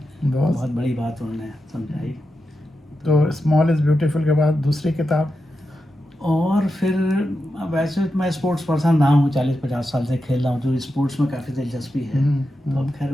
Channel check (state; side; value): normal; both; correlation 0.89